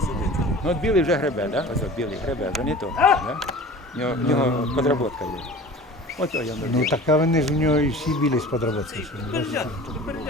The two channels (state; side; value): normal; both; correlation 0.40